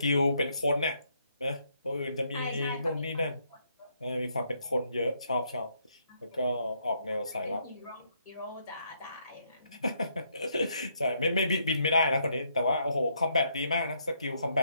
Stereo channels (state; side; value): inverted; both; correlation -0.74